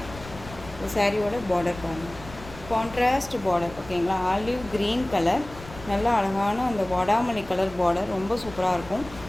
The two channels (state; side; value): noise; left; rumble, 16 dB below the sound